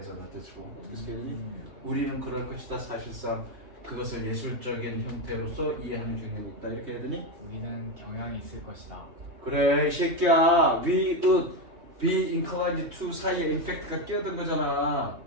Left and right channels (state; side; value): late; left; 3.2 ms